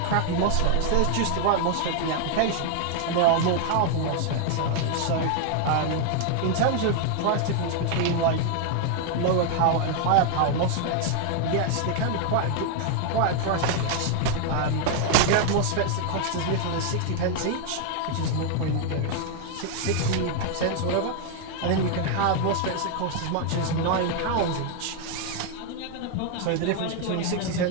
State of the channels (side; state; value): both; different; correlation 0.00